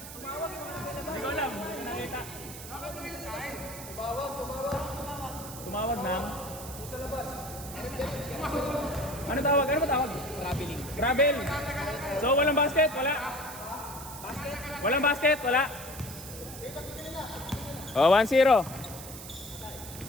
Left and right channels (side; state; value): right; noise; hiss, 12 dB below the sound